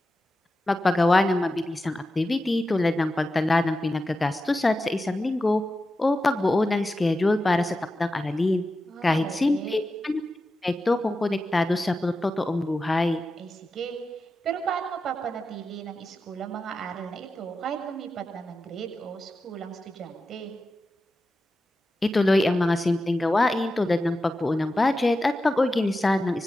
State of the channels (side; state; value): both; normal; correlation 0.92